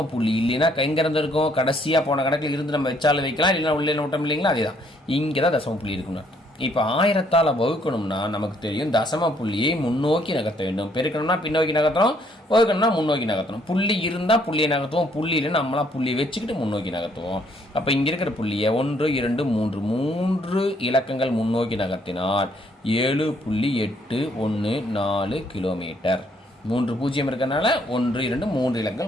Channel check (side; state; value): both; normal; correlation 0.67